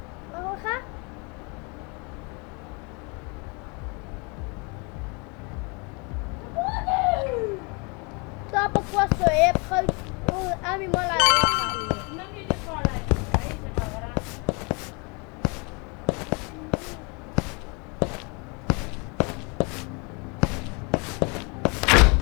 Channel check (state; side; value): quieter; right; 31.2 dB